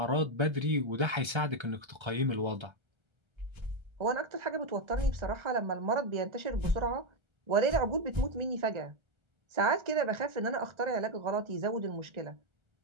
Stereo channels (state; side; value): late; left; 1.3 ms